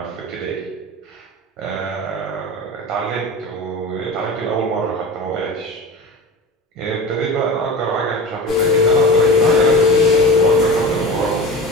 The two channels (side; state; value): both; normal; correlation 0.31